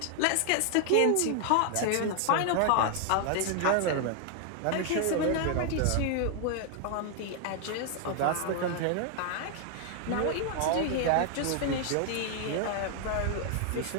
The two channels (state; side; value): different; both; correlation 0.00